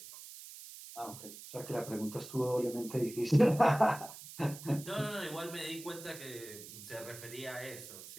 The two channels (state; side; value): noise; right; hiss, 14 dB below the sound